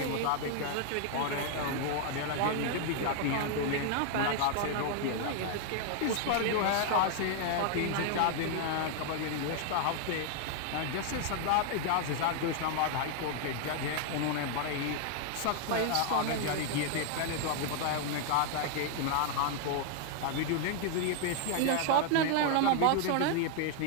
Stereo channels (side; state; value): both; different; correlation 0.00